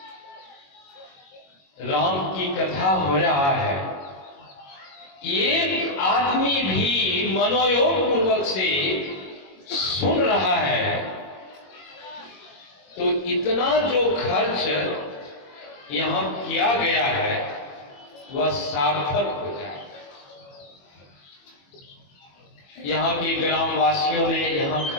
राम की कथा हो रहा है, एक आदमी भी मनोयोग पूर्वक से सुन रहा है, तो इतना जो खर्च यहां किया गया है वह सार्थक हो जाए। यहां के ग्रामवासियों ने यहां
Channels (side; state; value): right; late; 21 ms